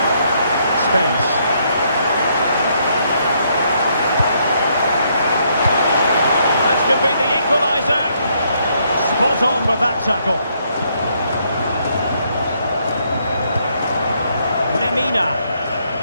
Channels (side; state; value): both; inverted; correlation -0.72